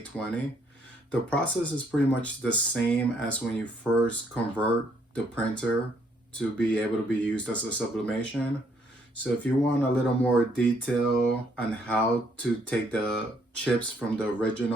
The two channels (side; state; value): both; normal; correlation 0.69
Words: The process is pretty much the same as when you first convert the printer to be able to be used as a sublimation. So if you want a little more detail on how to take the chips from the